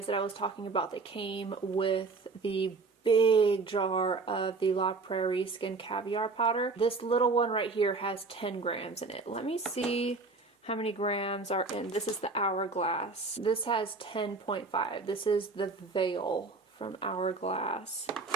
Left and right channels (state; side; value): quieter; left; 3.9 dB